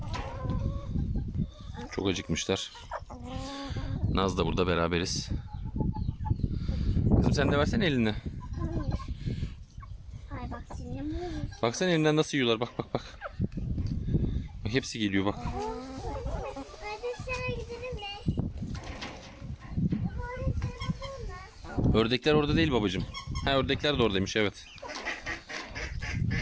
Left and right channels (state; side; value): identical; both; correlation 1.00